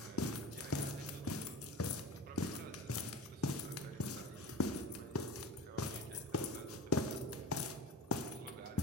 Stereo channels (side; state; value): both; normal; correlation 0.32